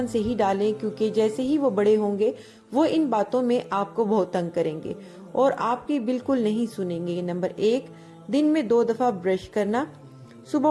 से ही डालें, क्योंकि जैसे ही वो बड़े होंगे वो इन बातों में आपको बहुत तंग करेंगे और आपकी बिल्कुल नहीं सुनेंगे। नंबर 1, दिन में 2 दफा ब्रश करना। सुबह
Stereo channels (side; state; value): both; identical; correlation 1.00